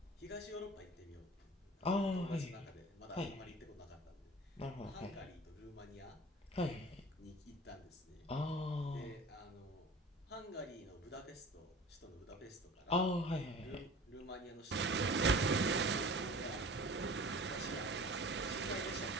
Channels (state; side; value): normal; both; correlation 0.41